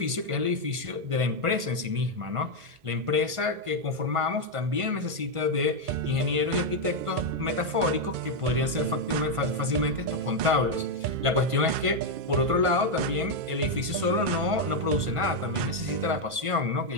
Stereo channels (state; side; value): late; left; 1.5 ms